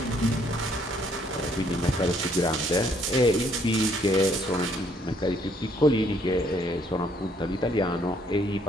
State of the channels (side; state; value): both; normal; correlation 0.66